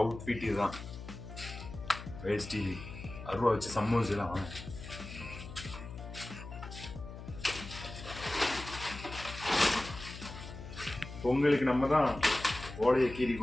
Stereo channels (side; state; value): left; noise; hum, 12 dB below the sound